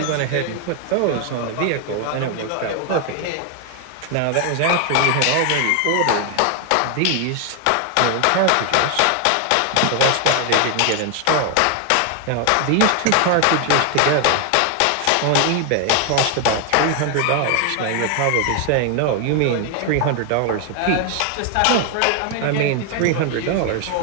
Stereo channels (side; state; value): both; different; correlation 0.00